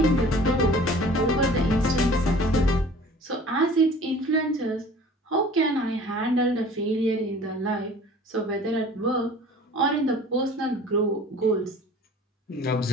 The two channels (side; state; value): both; normal; correlation 0.46